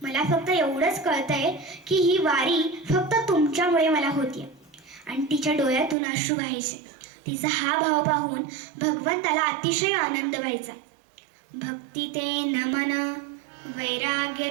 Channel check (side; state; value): left; drops out; at 6.0 s